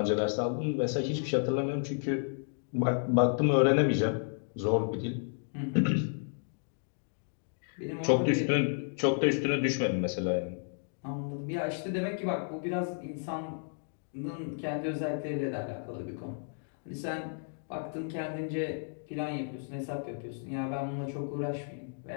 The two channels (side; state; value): right; silent; digital silence